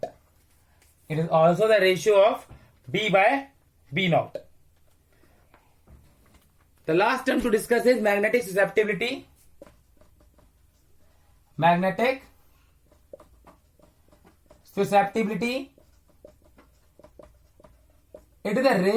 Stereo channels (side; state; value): both; identical; correlation 1.00